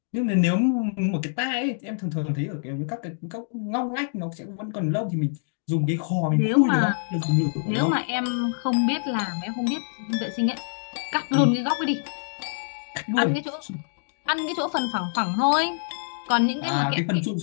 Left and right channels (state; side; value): silent; right; digital silence